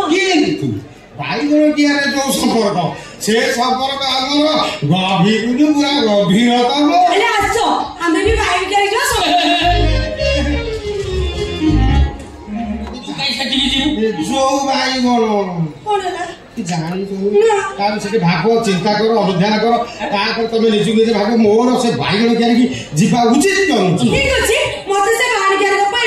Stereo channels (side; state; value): both; identical; correlation 1.00